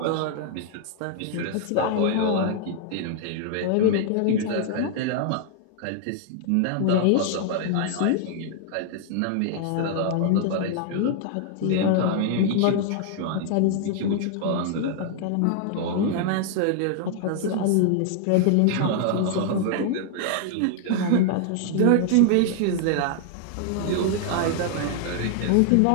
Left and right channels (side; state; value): both; different; correlation 0.00